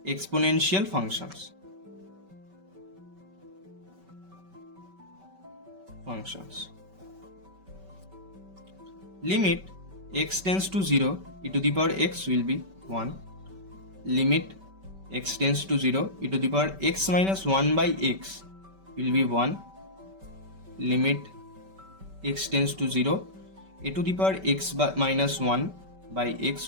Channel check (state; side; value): late; left; 5.2 ms